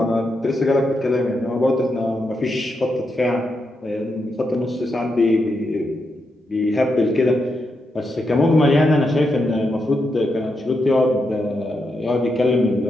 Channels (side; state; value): both; normal; correlation 0.84